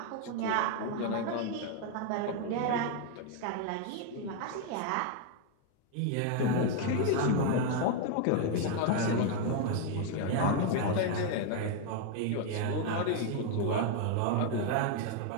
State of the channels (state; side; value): different; both; correlation 0.00